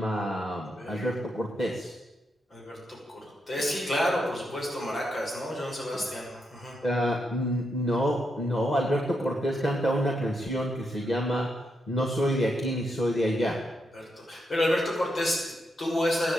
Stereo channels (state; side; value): normal; both; correlation 0.82